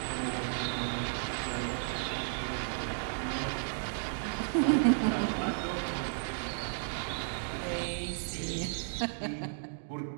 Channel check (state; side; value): silent; left; digital silence